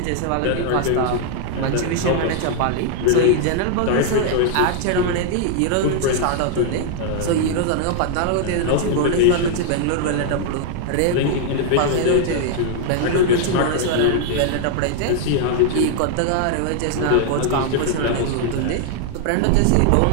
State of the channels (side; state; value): both; different; correlation 0.00